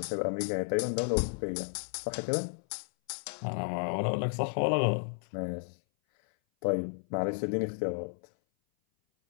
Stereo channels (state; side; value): silent; right; 56 dB below the other